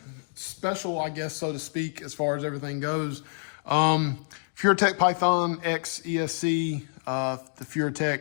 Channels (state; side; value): silent; right; digital silence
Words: special, I guess, so to speak, as far as everything goes. Furitek Python X ESC, the